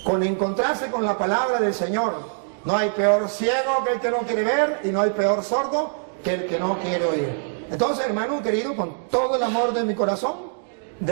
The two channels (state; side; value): silent; left; digital silence